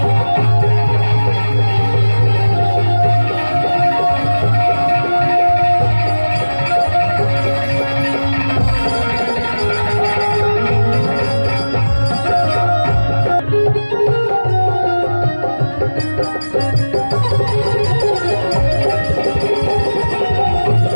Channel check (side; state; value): both; inverted; correlation -1.00